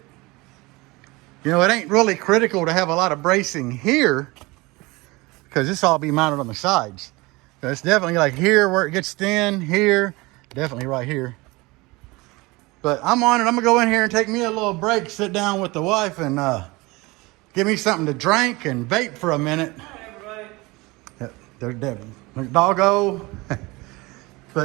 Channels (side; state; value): left; quieter; 23.2 dB